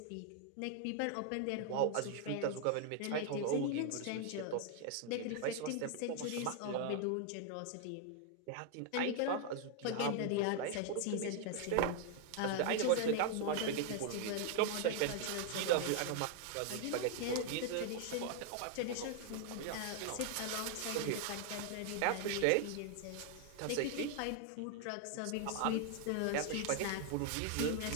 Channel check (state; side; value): different; both; correlation 0.00